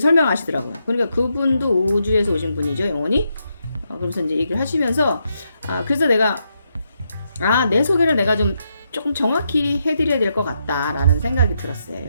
그러니까 그분도 우주에서 오신 분이죠, 영혼이. 그러면서 이제 얘기를 하시면서 그래서 내가 내 소개를 내가 좀 조금 정확히 해드려야 될 것 같다라는 생각이 들었어요,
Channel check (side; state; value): both; inverted; correlation -0.81